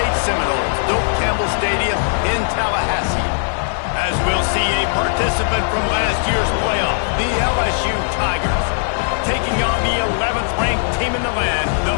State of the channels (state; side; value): silent; right; digital silence